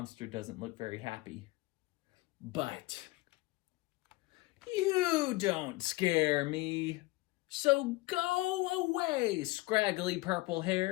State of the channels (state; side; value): quieter; right; 20.9 dB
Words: doesn't look very happy. But you don't scare me. So go away, scraggly purple